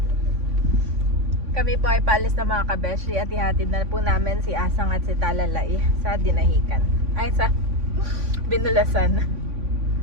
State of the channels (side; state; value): left; late; 3.5 ms